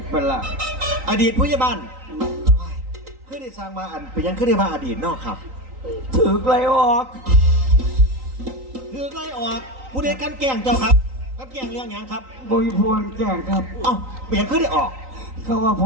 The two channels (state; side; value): late; left; 3.9 ms